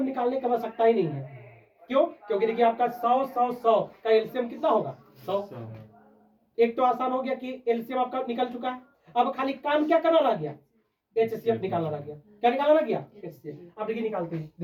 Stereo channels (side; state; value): both; identical; correlation 1.00